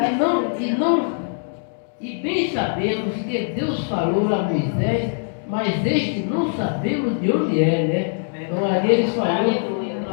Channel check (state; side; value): silent; right; digital silence